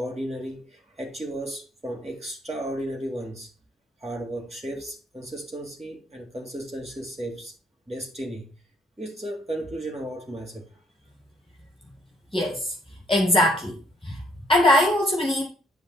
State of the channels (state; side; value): normal; both; correlation 0.67